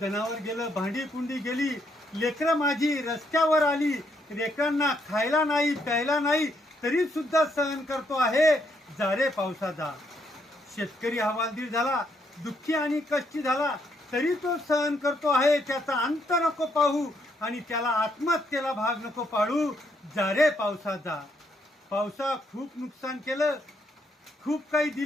गेलं, भांडी कुंडी गेली, लेकरं माझी रस्त्यावर आली. लेकरांना खायला नाही, प्यायला नाही, तरी सुद्धा सहन करतो आहे, जा रे पावसा जा. शेतकरी हवालदिल झाला, दुःखी आणि कष्टी झाला, तरी तो सहन करतो आहे. त्याचा अंत नको पाहू आणि त्याला आत्महत्येला भाग नको पाडू, जा रे पावसा जा. पावसा खूप नुकसान केलं, खूप काही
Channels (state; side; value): normal; both; correlation 0.74